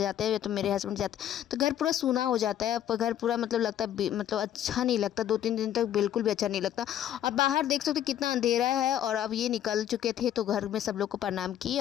हैं तो मेरे हस्बैंड जाते हैं तो घर पूरा सूना हो जाता है, पर घर पूरा मतलब लगता है मतलब अच्छा नहीं लगता, 2-3 दिन तक बिल्कुल भी अच्छा नहीं लगता। और बाहर देख सकते कितना अंधेरा है, और अब ये निकल चुके थे तो घर में सब लोग को प्रणाम किए,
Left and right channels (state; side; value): quieter; right; 11.1 dB